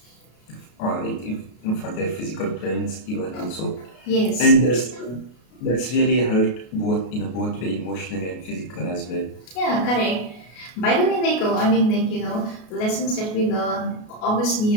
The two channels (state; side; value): late; right; 33 ms